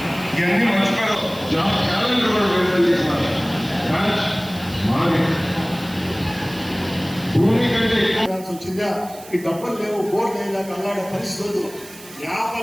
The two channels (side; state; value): right; noise; hiss, 18 dB below the sound